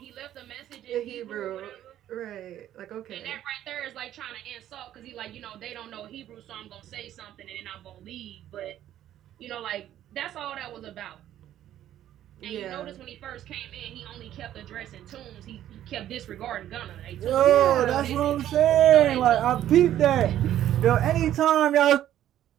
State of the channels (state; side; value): quieter; left; 12.0 dB